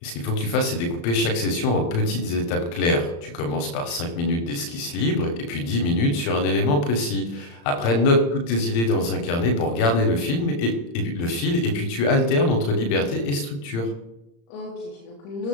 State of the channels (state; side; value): late; right; 35 ms